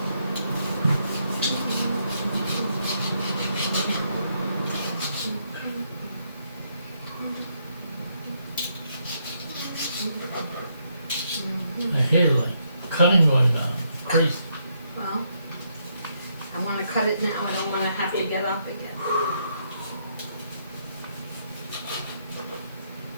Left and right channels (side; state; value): both; inverted; correlation -0.76